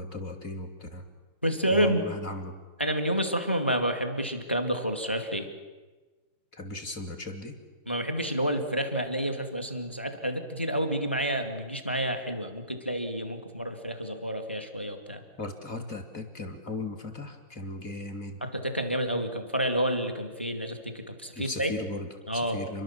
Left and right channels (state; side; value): inverted; both; correlation -0.50